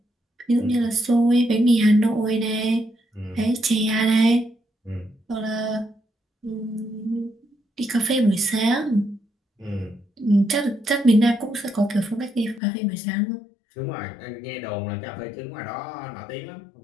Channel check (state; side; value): drops out; right; at 12.6 s